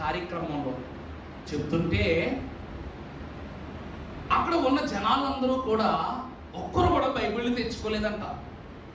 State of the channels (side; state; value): both; identical; correlation 1.00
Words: కార్యక్రమంలో చెప్తుంటే, అక్కడ ఉన్న జనాలందరూ కూడా ఒక్కరు కూడా బైబిల్ని తెచ్చుకోలేదంట.